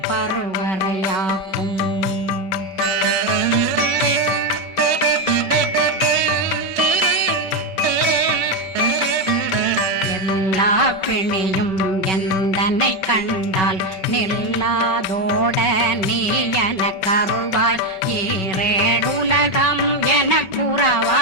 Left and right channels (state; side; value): late; right; 5.3 ms